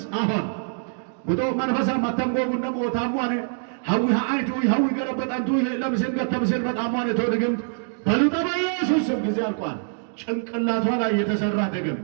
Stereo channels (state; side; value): silent; left; digital silence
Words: አሁን ውጦ መንፈሳ ማተንጎጉን ደሞ ታሟነ ሀዊ ሀአይቱ ሀዊ ገረበጠንቱ ለምስል ገተምስል በጣሟነ ተው ድግምት በሉጣ በኢየሱስም። ጊዜ አልቋል። ጭንቅላቷ ላይ የተሰራ